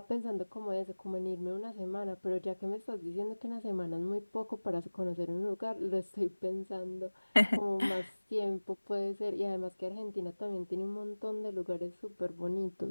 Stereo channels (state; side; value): inverted; both; correlation -1.00